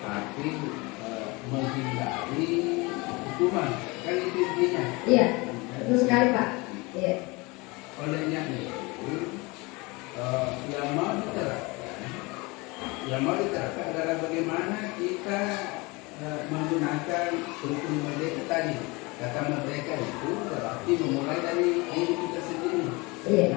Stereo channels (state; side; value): quieter; right; 25.4 dB